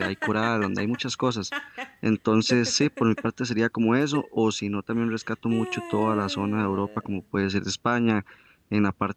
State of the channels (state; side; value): identical; both; correlation 1.00